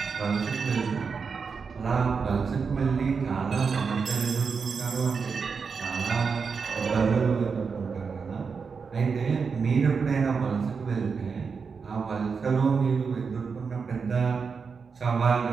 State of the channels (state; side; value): quieter; left; 5.5 dB